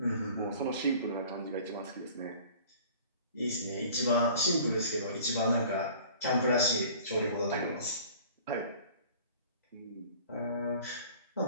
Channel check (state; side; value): inverted; both; correlation -0.47